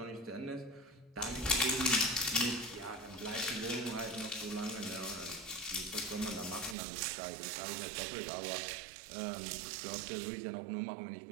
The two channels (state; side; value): drops out; left; at 6.8 s